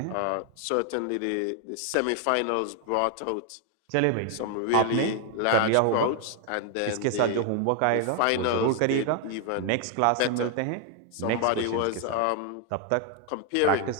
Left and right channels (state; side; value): different; both; correlation 0.00